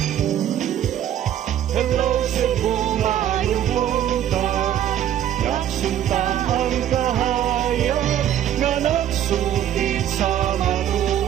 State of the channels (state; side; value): quieter; left; 10.8 dB